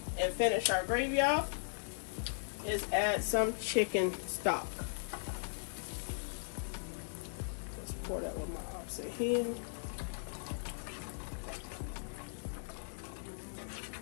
and finish our gravy off is add some chicken stock. Let's pour that with my opposite hand.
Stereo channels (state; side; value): silent; right; 52 dB below the other